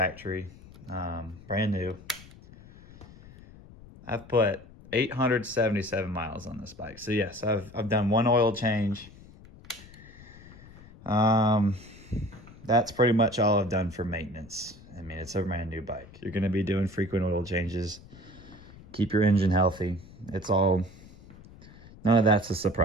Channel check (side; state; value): left; noise; rumble, 20 dB below the sound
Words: brand new. I've put 877 miles on this bike. So yes, I've done one oil change. That's pretty much all I've done for maintenance. I mean, it's a brand new bike. You're gonna be doing frequent oil changes. Keep your engine healthy. None of that's a